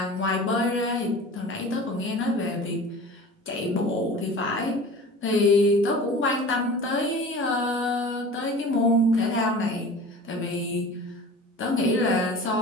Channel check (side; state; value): both; normal; correlation 0.39